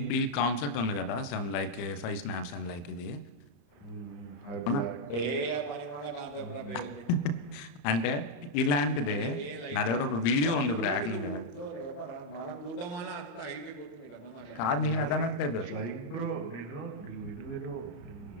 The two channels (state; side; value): late; right; 35 ms